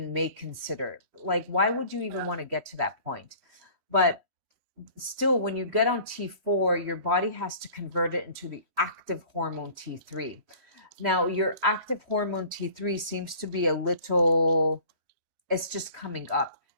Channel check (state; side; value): late; left; 3.1 ms